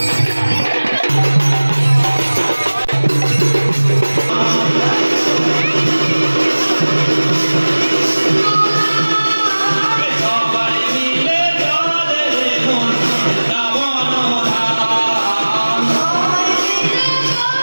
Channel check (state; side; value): inverted; both; correlation -1.00